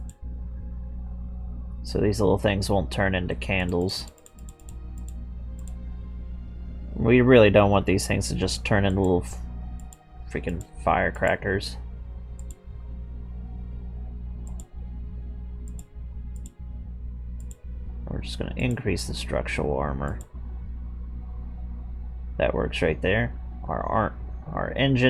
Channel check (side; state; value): both; identical; correlation 1.00